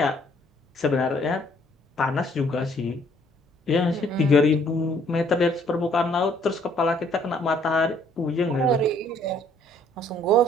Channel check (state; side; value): normal; both; correlation 0.62